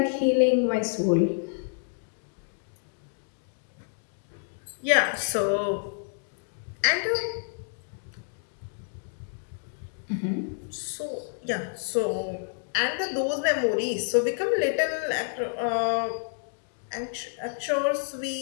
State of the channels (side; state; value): right; silent; digital silence